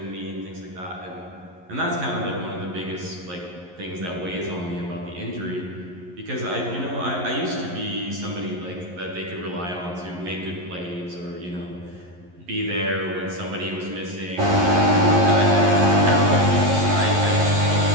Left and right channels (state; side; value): late; left; 11 ms